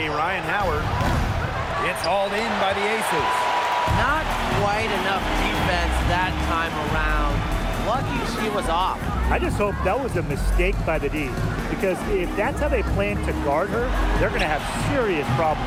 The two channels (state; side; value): identical; both; correlation 1.00